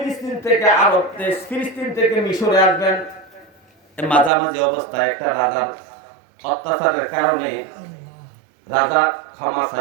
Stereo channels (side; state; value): left; drops out; at 4.3 s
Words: থেকে আরব দেশ ফিলিস্তিন থেকে মিশরে আসবেন মাঝামাঝি অবস্থায় একটা রাজার অত্যাচারের কারণে রাজা ক্ষমা